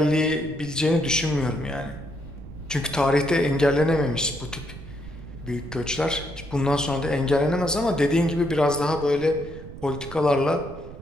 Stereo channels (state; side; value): noise; right; rumble, 14 dB below the sound